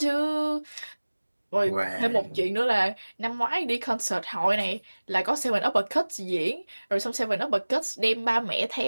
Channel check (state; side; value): inverted; both; correlation -1.00